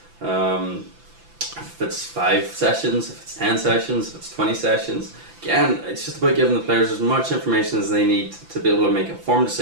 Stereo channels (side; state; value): left; late; 5.9 ms